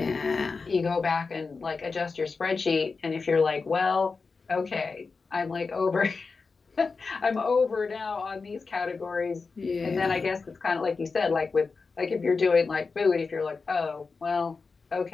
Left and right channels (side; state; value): right; quieter; 4.5 dB